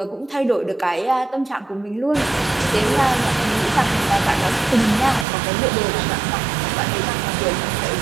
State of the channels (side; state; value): left; drops out; at 5.2 s